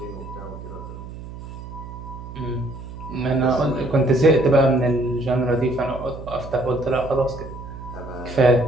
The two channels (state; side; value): noise; right; hum, 12 dB below the sound